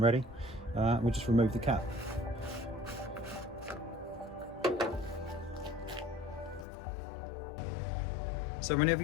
ready. We'll just remove the cap. So whenever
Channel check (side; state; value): right; drops out; at 6.7 s